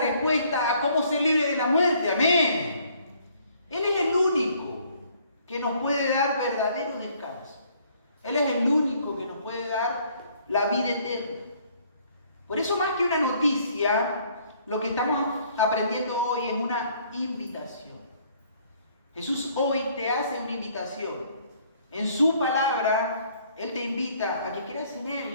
a cómo ser libre de la muerte. Amén. Él es el único que nos puede dar verdadero descanso. Él es el único que nos puede dar la vida eterna. Por eso, más que una noticia, lo que estamos aprendiendo hoy es una invitación. Jesús hoy te hace una invitación. En su palabra, Él te invita a que creas en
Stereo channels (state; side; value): inverted; both; correlation -0.62